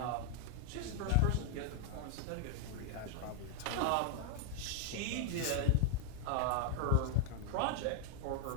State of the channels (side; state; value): both; different; correlation 0.01